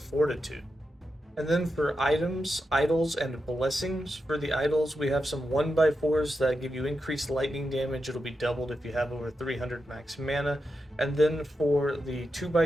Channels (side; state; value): both; normal; correlation 0.87